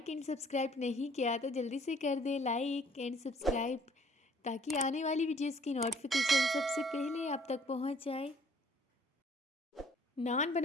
एंड सब्सक्राइब नहीं किया तो जल्दी से कर दें लाइक एंड सब्सक्राइब, ताकि आने वाली वीडियोस की नोटिफिकेशन सबसे पहले आप तक पहुंच जाए। नान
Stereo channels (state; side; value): normal; both; correlation 0.58